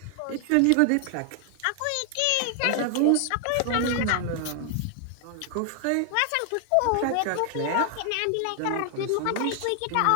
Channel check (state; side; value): different; both; correlation 0.00